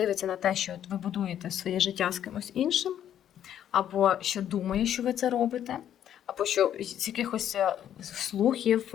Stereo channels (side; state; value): right; quieter; 10.4 dB